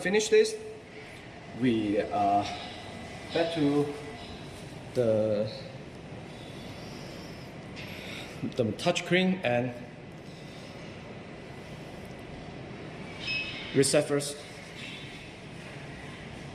this, we back to the touchscreen and reset first.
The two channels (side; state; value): both; identical; correlation 1.00